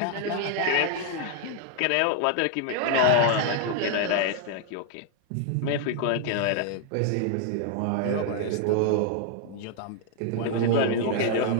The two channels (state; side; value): different; both; correlation 0.00